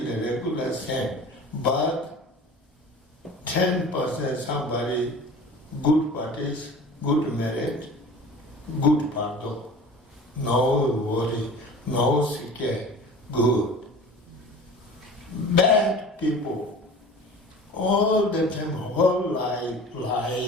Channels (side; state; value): both; normal; correlation 0.40